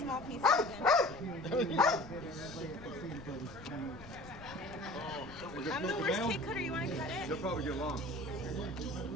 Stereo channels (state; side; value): noise; left; rumble, 17 dB below the sound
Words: small pieces then. I'm the worst cake cutter. You want to cut it? They'll probably get long.